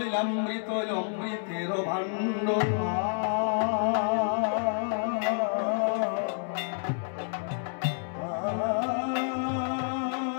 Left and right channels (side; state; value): right; silent; digital silence